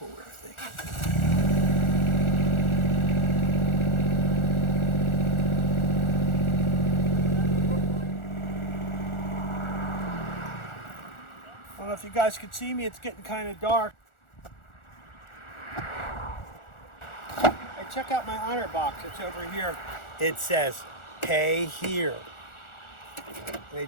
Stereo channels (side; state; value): right; late; 1.4 ms